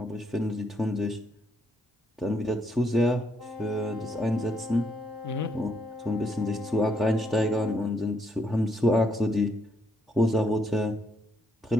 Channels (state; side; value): normal; both; correlation 0.74